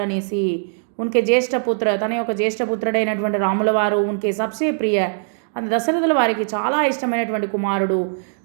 అనేసి. ఉన్కే జ్యేష్ఠపుత్ర, తన యొక్క జ్యేష్ఠపుత్రుడైనటువంటి రాముల వారు ఉన్కే సబ్సే ప్రియ, అది దశరథుల వారికి చాలా ఇష్టమైనటువంటి కుమారుడు.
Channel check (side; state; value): left; silent; digital silence